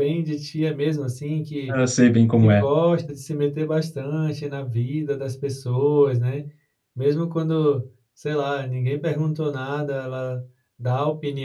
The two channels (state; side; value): identical; both; correlation 1.00